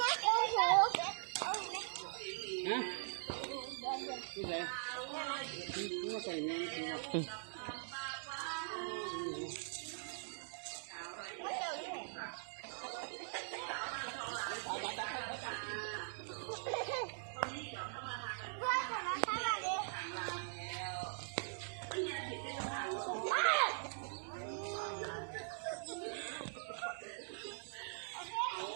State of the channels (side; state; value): left; silent; digital silence